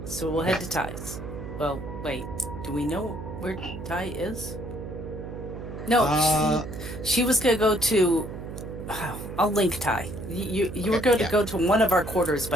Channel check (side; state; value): right; noise; hum, 9 dB below the sound